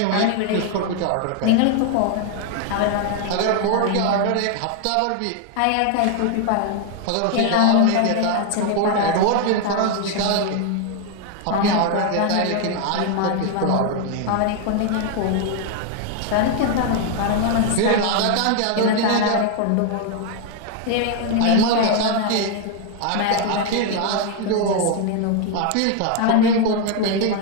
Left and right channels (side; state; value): both; different; correlation 0.01